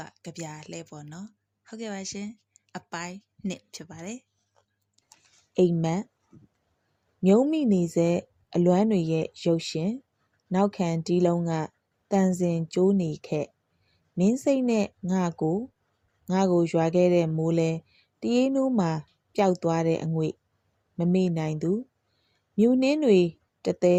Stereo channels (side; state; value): both; identical; correlation 1.00